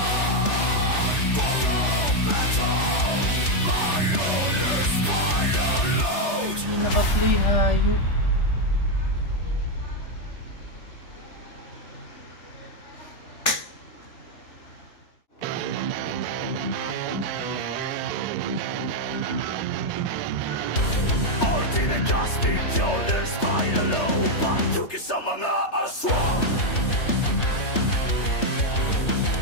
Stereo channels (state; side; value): late; right; 3.3 ms